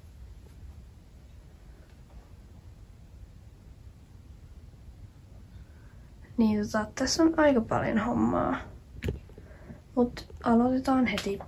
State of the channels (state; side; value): identical; both; correlation 1.00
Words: Niin tässä on aika paljon hommaa. Mut aloitetaan heti.